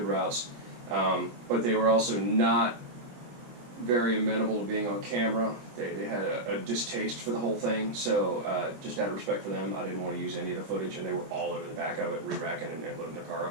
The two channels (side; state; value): left; late; 25 ms